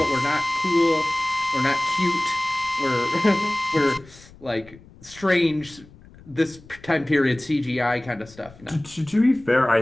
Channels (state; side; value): noise; left; rumble, 23 dB below the sound